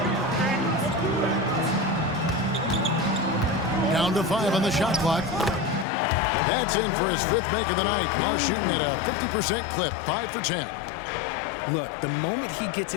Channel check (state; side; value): drops out; right; at 5.9 s